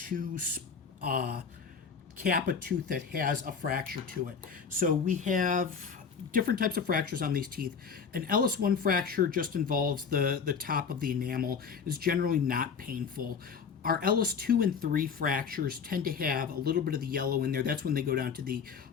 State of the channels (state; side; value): quieter; right; 6.1 dB